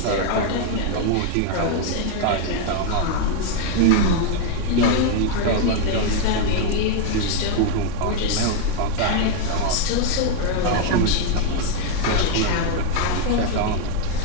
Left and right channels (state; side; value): different; both; correlation 0.01